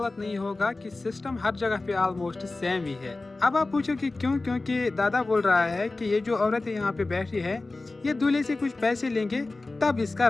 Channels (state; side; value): quieter; right; 3.3 dB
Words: नहीं होगा कि सिस्टम हर जगह पे ऑलमोस्ट सेम ही है। अब आप पूछो कि क्यों? क्योंकि दादा बोल रहा है कि ये जो औरतें यहाँ पे बैठी है ये दूल्हे से कुछ पैसे लेंगे तब इसका